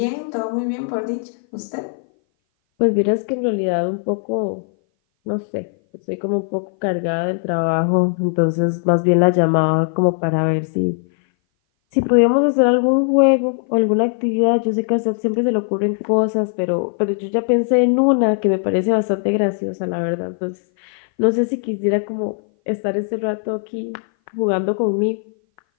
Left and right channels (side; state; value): right; silent; 58 dB below the other